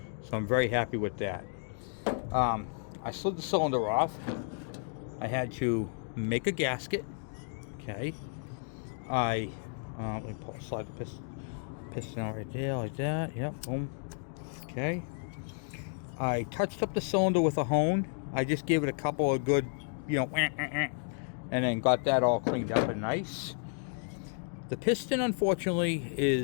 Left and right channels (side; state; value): right; silent; 56 dB below the other